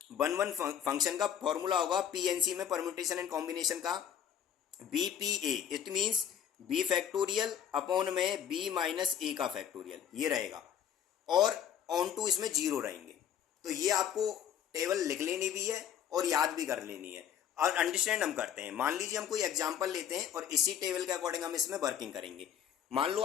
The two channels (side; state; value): right; quieter; 9.1 dB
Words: 1 1 फंक्शन का फॉर्मूला होगा पीएनसी में, परम्यूटेशन एंड कॉम्बिनेशन का, बीपीए। It means b factorial upon में बी माइनस ए का फैक्टोरियल, ये रहेगा। और ऑन टू इसमें 0 रहेंगे। तो ये आपको टेबल लिख लेनी भी है और याद भी कर लेनी है, और अंडरस्टैंड हम करते हैं। मान लीजिए हम कोई एग्जांपल लेते हैं और इसी टेबल के अकॉर्डिंग हम इसमें वर्किंग करेंगे। मान लो